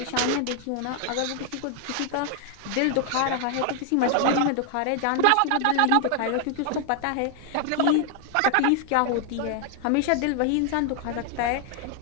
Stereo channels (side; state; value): both; different; correlation 0.00